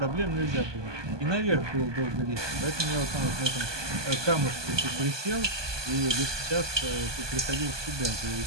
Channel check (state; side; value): late; left; 1.2 ms